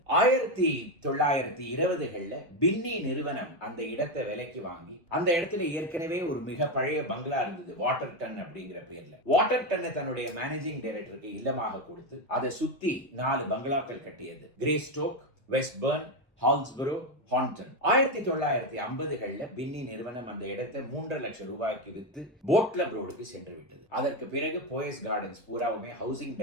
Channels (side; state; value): both; normal; correlation 0.10